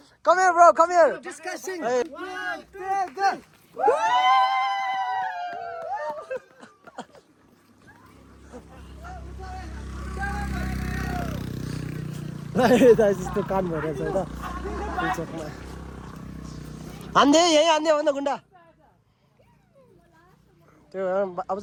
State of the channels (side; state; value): both; identical; correlation 1.00